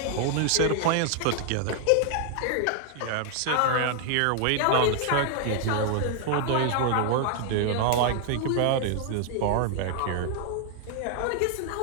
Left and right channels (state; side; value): different; both; correlation 0.00